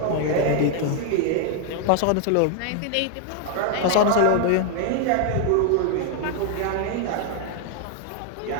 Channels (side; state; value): both; different; correlation 0.00